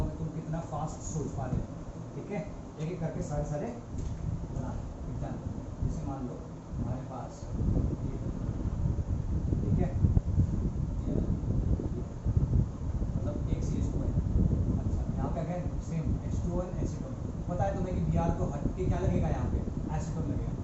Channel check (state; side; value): identical; both; correlation 1.00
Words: कि तुम कितना फास्ट सोच पा रहे हो, ठीक है, एक एक करके सारे बना एग्जाम। जैसे मान लो हमारे पास ये, ठीक है, मतलब एक CH2 है। अच्छा, यहाँ पे अगेन सेम H2O और एसिटोन, पता है तुम्हें कि Br को हट के क्या लगेगा, यहाँ पे एसिटोन लगेगा,